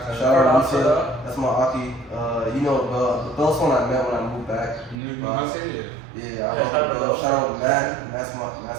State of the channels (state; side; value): drops out; left; at 5.0 s